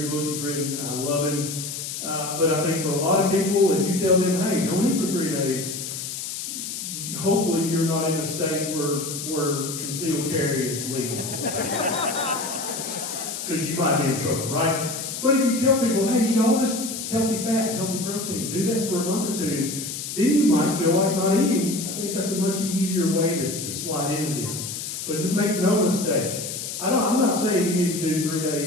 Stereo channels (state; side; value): noise; left; hiss, 6 dB below the sound